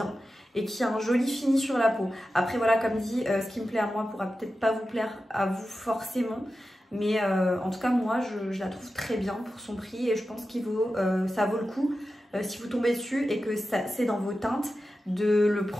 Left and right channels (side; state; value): both; normal; correlation 0.92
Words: et qui a un joli fini sur la peau. Après, voilà, comme dit, ce qui me plaît à moi pourra peut-être pas vous plaire à vous forcément. Mais en tout cas, moi, je la trouve très bien pour son prix et je pense ça vaut le coup. Si vous tombez dessus et que c'est dans vos teintes, de le